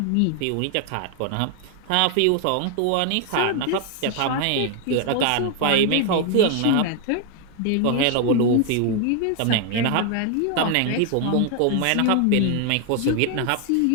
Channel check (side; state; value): both; different; correlation 0.00